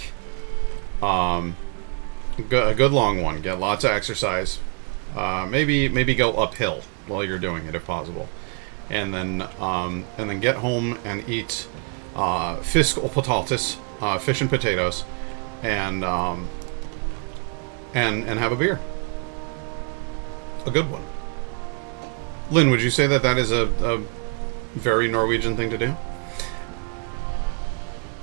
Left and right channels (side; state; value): left; quieter; 37.3 dB